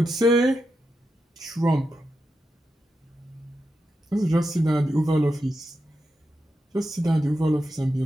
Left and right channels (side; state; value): both; normal; correlation 0.87